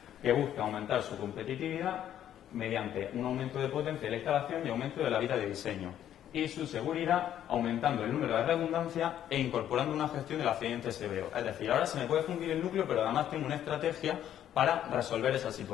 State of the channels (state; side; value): quieter; right; 10.8 dB